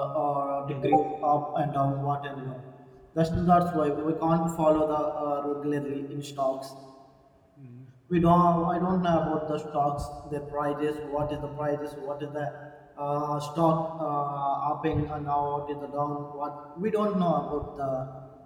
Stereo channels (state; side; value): identical; both; correlation 1.00